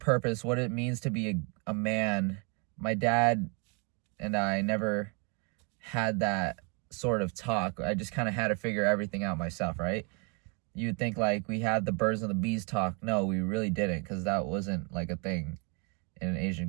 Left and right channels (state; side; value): quieter; left; 34.1 dB